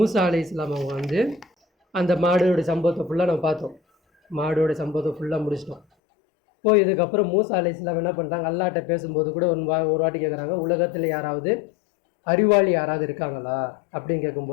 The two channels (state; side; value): drops out; right; at 5.8 s